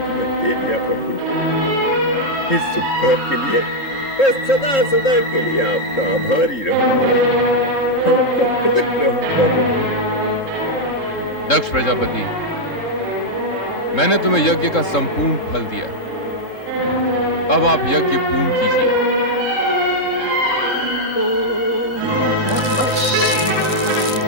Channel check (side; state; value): right; late; 3.7 ms